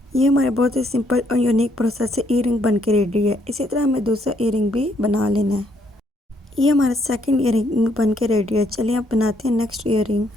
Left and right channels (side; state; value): both; normal; correlation 0.70